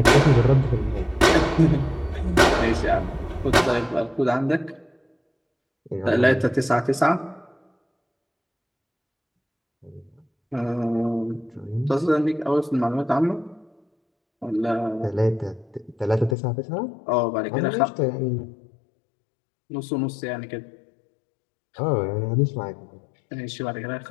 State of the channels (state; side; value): drops out; right; at 16.4 s